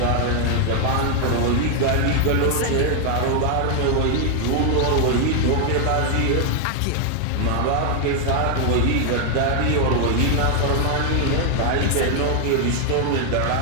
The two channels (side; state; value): both; different; correlation 0.00